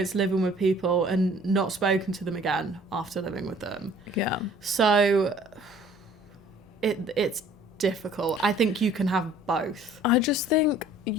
living with people and not spoken to them again after living with them. Yeah. So it's difficult. I think you can have both. I just think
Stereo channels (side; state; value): both; normal; correlation 0.54